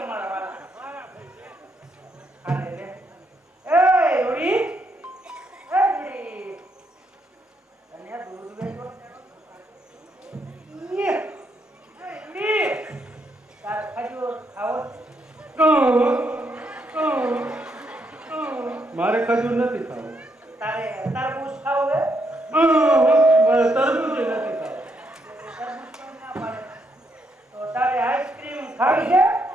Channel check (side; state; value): both; normal; correlation 0.77